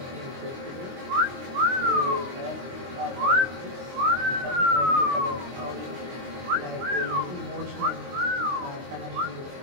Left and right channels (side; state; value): left; late; 23 ms